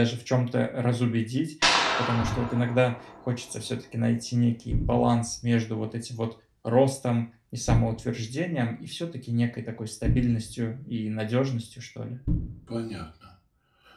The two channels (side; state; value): both; identical; correlation 1.00